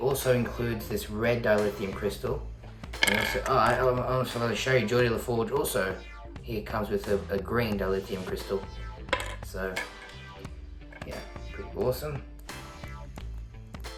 includes this red dilithium crystal. And also, I almost forgot to show you, Geordi LaForge also, he comes with a green dilithium crystal. So, yeah, pretty awesome.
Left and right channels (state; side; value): identical; both; correlation 1.00